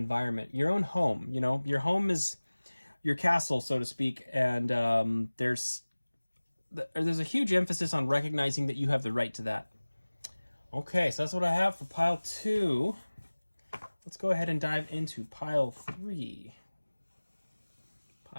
your own home. You know, your home is your castle, so to speak, and there's a huge emphasis on recognizing that you have the right to that. Okay, so that's what I have for pile 2. Let's go ahead and dive into pile 3.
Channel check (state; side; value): inverted; both; correlation -1.00